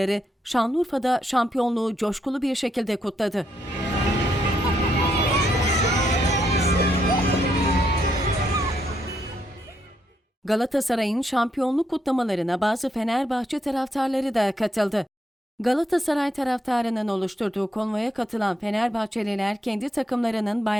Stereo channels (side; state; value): both; normal; correlation 0.77